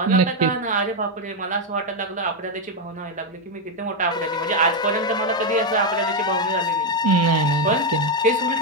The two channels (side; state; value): both; normal; correlation 0.05